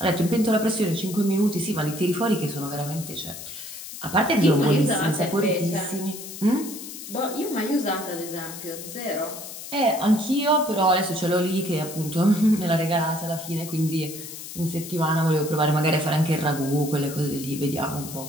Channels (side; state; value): left; noise; hiss, 11 dB below the sound